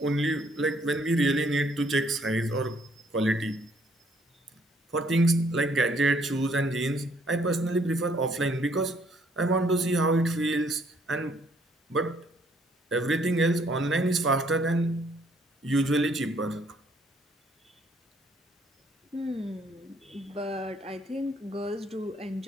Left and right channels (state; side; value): normal; both; correlation 0.66